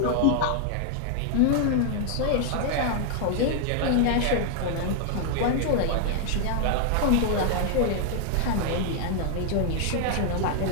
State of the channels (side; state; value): both; different; correlation 0.00